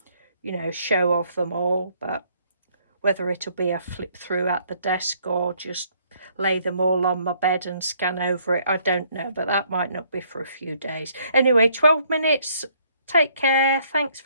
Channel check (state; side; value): inverted; both; correlation -0.66